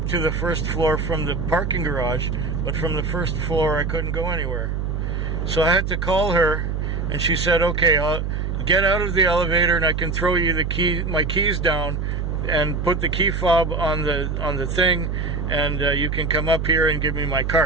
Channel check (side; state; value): right; noise; hum, 2 dB below the sound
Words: to the first floor from the parking garage, but from the first floor I couldn't go anywhere. So I had to call her, and she said, okay, I'll get out of the elevator and I can throw you my keys down and put the key fob on the thing, and you can come up here and give me my